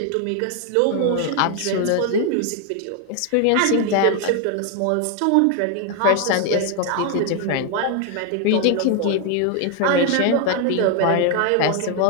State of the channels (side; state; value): both; different; correlation 0.01